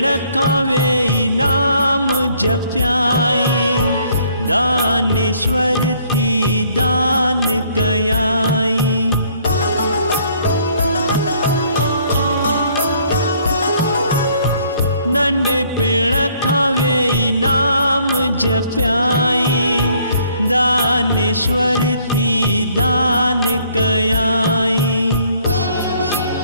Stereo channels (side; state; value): both; inverted; correlation -0.63